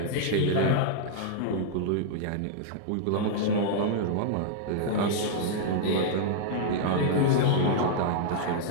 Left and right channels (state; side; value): different; both; correlation -0.01